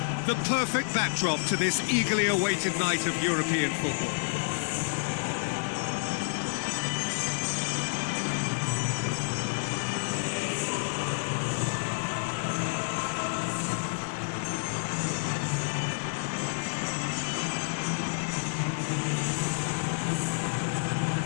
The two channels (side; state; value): right; silent; 58 dB below the other